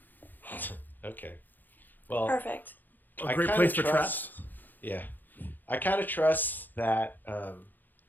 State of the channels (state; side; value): late; right; 0.087 ms